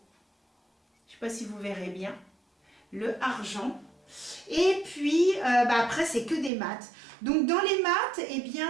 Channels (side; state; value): left; drops out; at 6.5 s